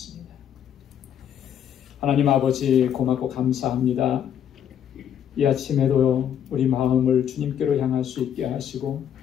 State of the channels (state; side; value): quieter; right; 9.4 dB